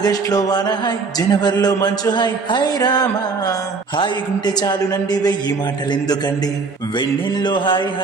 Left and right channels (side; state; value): left; quieter; 4.5 dB